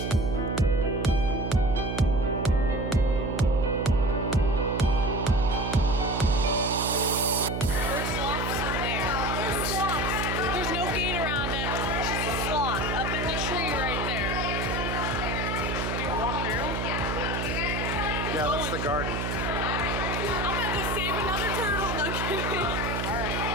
Yeah, that's the garden. I'm gonna go save another turtle. No kidding. Alright.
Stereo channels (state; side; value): noise; right; hum, 2 dB below the sound